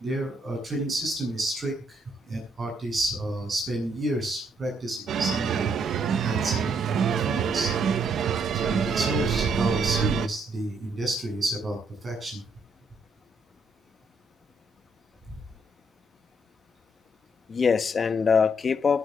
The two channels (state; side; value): normal; both; correlation 0.72